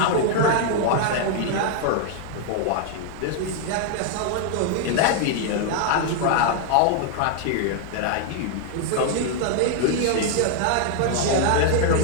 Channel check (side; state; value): both; different; correlation 0.00